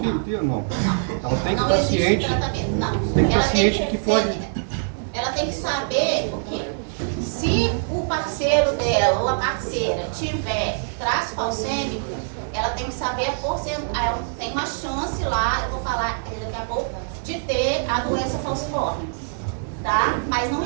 ter ou não? Ela tem não paciente, existe tratamento, não. tem Ela paciente tem que pode... Ela tem que saber o quê? Se o parceiro dela ou a parceira tiver traço falcêmico, ela tem que saber a porcentagem. Ela tem uma chance lá, eu vou falar daqui a pouco, de ter a doença falciforme. Tá? Mas não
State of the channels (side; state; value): left; silent; digital silence